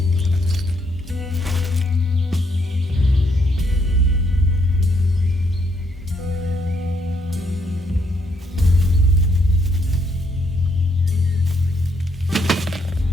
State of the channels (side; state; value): both; normal; correlation 0.73